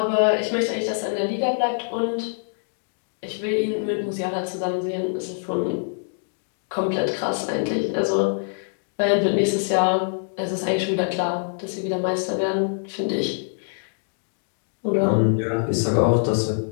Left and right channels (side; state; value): right; silent; digital silence